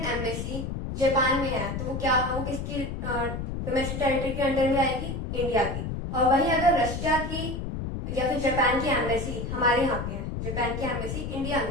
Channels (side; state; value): left; noise; rumble, 5 dB below the sound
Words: एम्बेसी जापान में है तो वो क्या, वो किसकी डोमेस्टिक टेरिटरी के अंडर में आएगी? इंडिया की। और वही अगर रशिया की या फिर जापान की एम्बेसी हमारे यहाँ पे है, जापान की एम्बेसी इंडिया